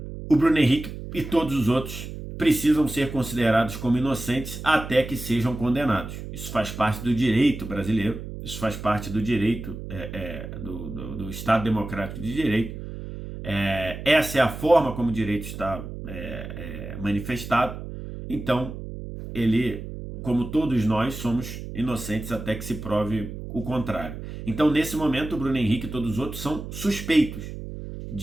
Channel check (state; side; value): noise; right; hum, 9 dB below the sound